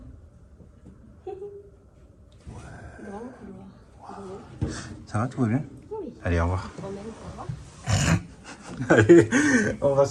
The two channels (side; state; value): both; identical; correlation 1.00